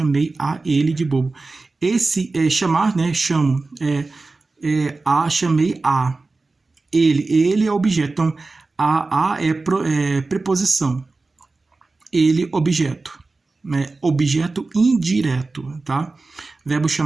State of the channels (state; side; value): quieter; left; 3.6 dB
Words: a ele de bobo. Esse chamar, né? Chamo. Chamei a. Ele é objeto. Então, a é preposição. Ele, objeto. Né? Objeto indireto, tá? Verbo